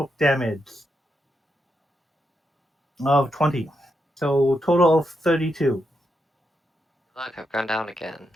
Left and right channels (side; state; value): both; normal; correlation 0.83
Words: damage of 20. So total of 32. Look, I've gone down again.